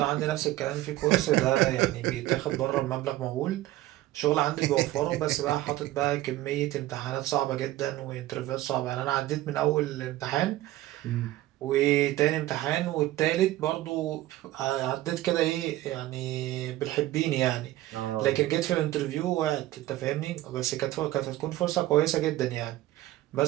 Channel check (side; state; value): left; quieter; 15.8 dB